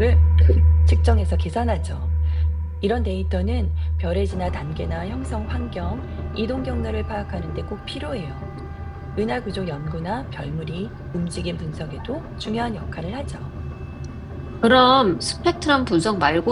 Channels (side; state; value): both; identical; correlation 1.00